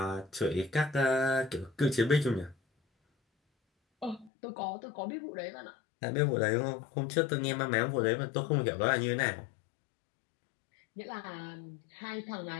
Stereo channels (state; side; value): drops out; right; at 4.3 s